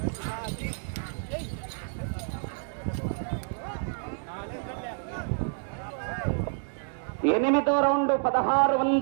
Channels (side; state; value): left; silent; digital silence